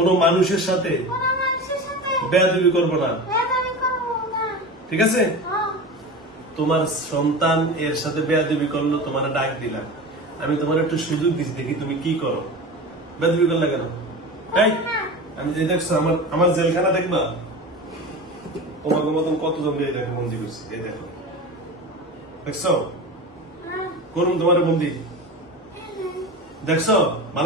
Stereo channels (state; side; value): normal; both; correlation 0.30